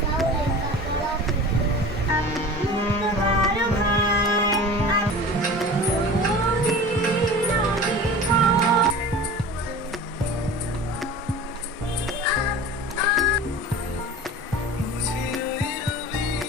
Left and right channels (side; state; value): both; normal; correlation 0.37